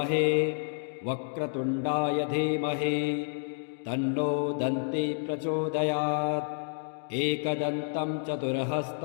वक्रतुण्डाय धीमहि तन्नो दन्ती प्रचोदयात् एकदन्तं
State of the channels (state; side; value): silent; right; digital silence